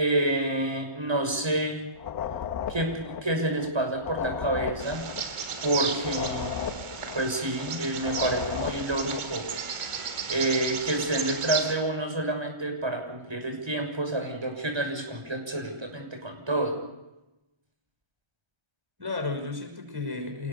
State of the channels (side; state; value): left; late; 1.3 ms